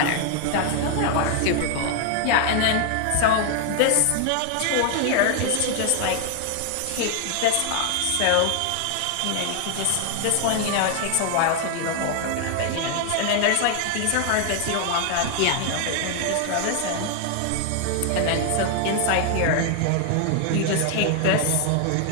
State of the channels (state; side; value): different; both; correlation 0.00